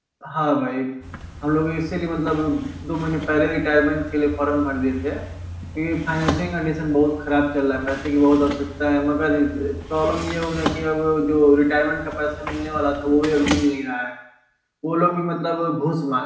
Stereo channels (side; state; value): both; identical; correlation 1.00